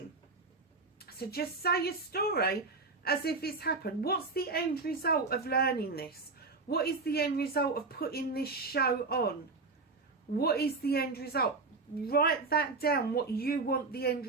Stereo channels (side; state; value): left; quieter; 3.9 dB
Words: So just say your story as if it's happened. What's the end result of learning this? What is the end result of putting this show on? What is the end result? Write that down, what you want the end